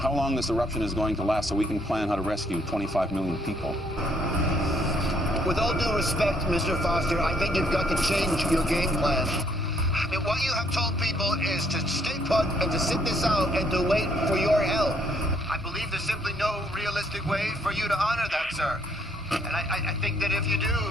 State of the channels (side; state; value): both; normal; correlation 0.68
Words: long this eruption is going to last so we can plan how to rescue 25 million people. With all due respect, Mr. Foster, I think you've got to change your game plan. I mean, what you have told people is to stay put and to sit this out and to wait for your help. I believe there's simply no realistic way for you to honor that, sir. And I think that if you